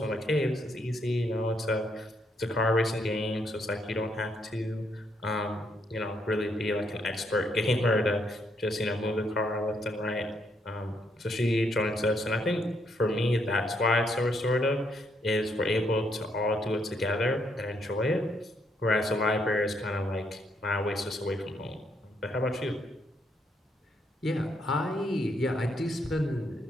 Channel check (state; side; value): normal; both; correlation 0.74